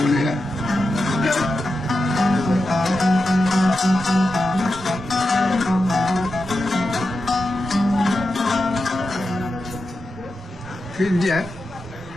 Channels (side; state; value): both; normal; correlation 0.89